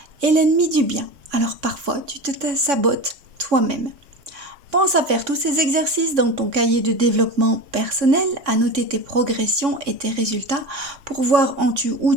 est l'ennemi du bien. Alors parfois, tu te sabotes toi-même. Pense à faire tous ces exercices dans ton cahier de développement personnel, à noter tes progressions et tes résultats pour voir où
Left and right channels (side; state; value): left; late; 3.6 ms